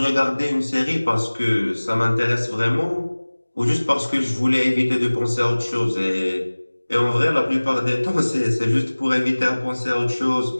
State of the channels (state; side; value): inverted; both; correlation -1.00